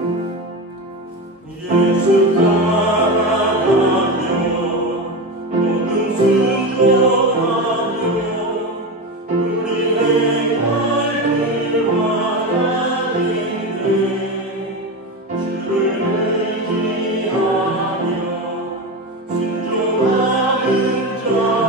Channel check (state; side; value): normal; both; correlation 0.20